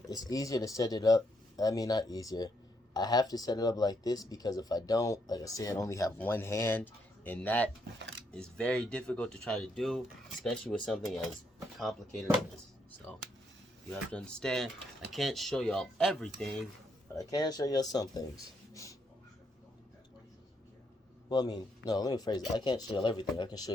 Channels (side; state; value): both; normal; correlation 0.76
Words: it's easier to set it up. I mean, not easier. I have to set it up like this because if I don't, like I said, I only have one hand, and that is very difficult to try to do, especially with something as complicated as this. So you have to understand, I can't show y'all everything, but I can show y'all some things. Well, I mean, no, let me phrase it. I can't show y'all everything. I can show